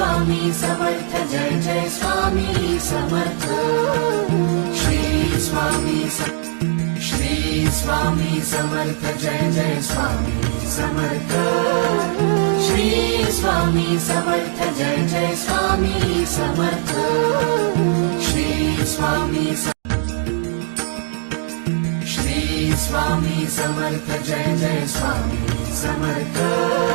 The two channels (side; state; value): left; silent; 66 dB below the other